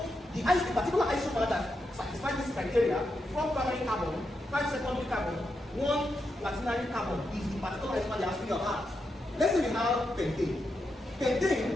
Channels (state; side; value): normal; both; correlation 0.85